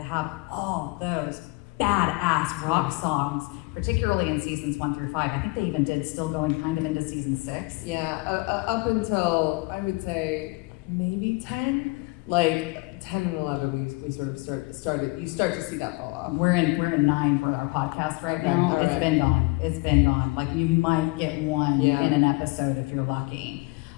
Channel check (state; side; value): quieter; right; 25.3 dB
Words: all those badass rock songs, particularly in seasons 1 through 5. I think they even did still going kind of into season 6. Yeah, up until, I would say, maybe 10. Like 10 and 11, we sort of started. You start to see that fall off. We're in 9 for our podcast right now. Okay. It's been gone. Like you might get one in an episode if you're lucky.